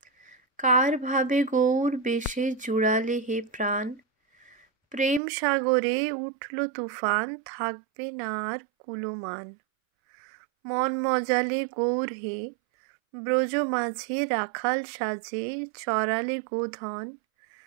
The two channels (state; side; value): drops out; left; at 5.2 s